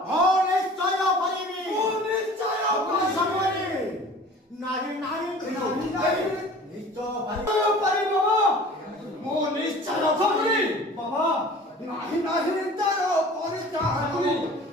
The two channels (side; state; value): both; normal; correlation 0.44